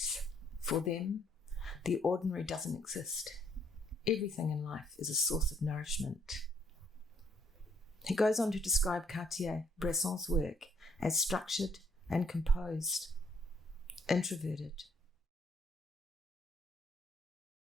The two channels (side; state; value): both; normal; correlation 0.67